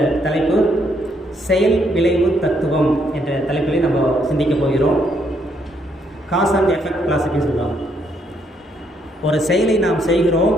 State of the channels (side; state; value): both; normal; correlation 0.72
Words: தலைப்பு செயல் விளைவு தத்துவம் என்ற தலைப்பிலே நம்ம சிந்திக்க போகிறோம். காஸ் அண்ட் எஃபெக்ட் கிளாசிக்னு சொல்லுவாங்க. ஒரு செயலை நாம் செய்கிறோம்,